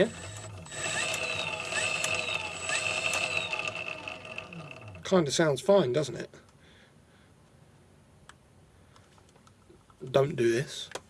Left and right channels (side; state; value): both; identical; correlation 1.00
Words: Kind of sounds fine, doesn't it? Don't do this.